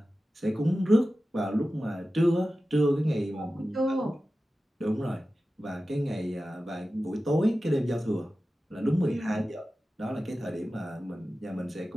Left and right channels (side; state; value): both; normal; correlation 0.94